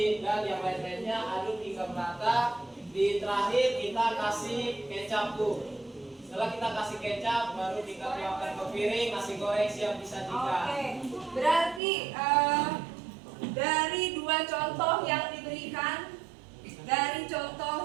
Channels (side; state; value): left; drops out; at 11.8 s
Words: dan yang lain-lainnya, aduk hingga merata. Di terakhir kita kasih kecap, Bu. Setelah kita kasih kecap, baru kita tuangkan ke piring, nasi goreng siap disajikan. Oke, berarti dari 2 contoh yang